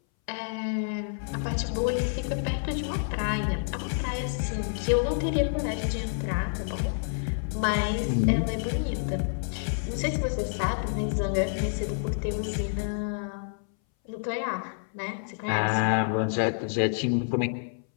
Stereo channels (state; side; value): silent; right; 59 dB below the other